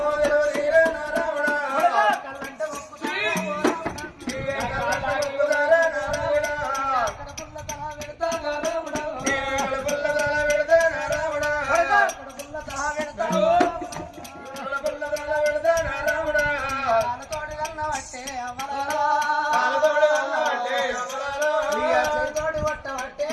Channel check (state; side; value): identical; both; correlation 1.00